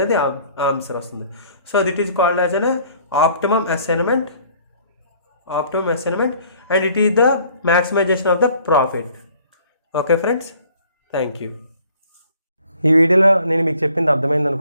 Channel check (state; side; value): inverted; both; correlation -0.57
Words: ఆన్సర్ వస్తుంది. So that is called as an optimum assignment and it is the maximization of the profit. Okay friends, thank you. ఈ వీడియోలో నేను మీకు చెప్పింది అర్థమైంది